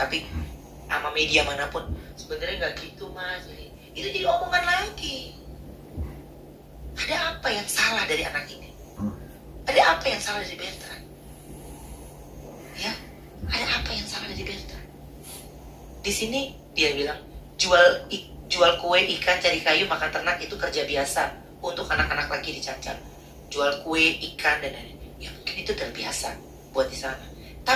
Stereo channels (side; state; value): both; identical; correlation 1.00